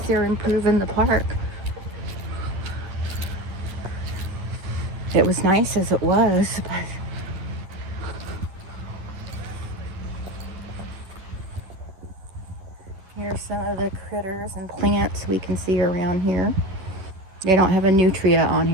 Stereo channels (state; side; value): late; left; 11 ms